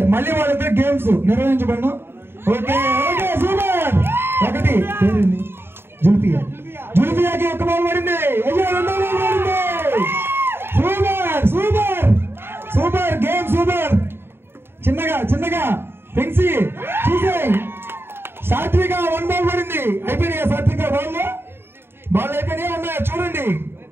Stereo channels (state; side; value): late; left; 0.11 ms